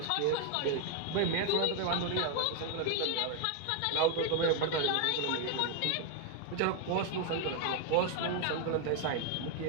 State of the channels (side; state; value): both; different; correlation 0.01